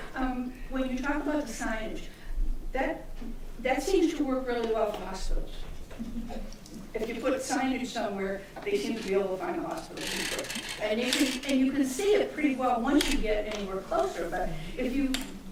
When you talk about the signage, that seems to work really well for hospitals. If you put signage somewhere, they seem to be able to find a hospital. And you can see it pretty well once you get anywhere closer, but if you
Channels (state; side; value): identical; both; correlation 1.00